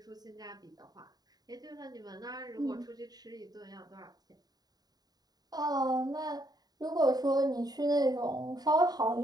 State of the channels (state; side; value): late; left; 0.19 ms